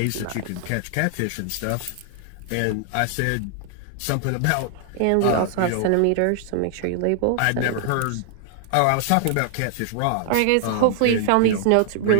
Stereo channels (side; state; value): both; different; correlation 0.00